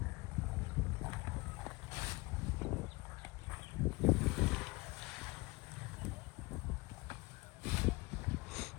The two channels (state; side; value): quieter; right; 24.0 dB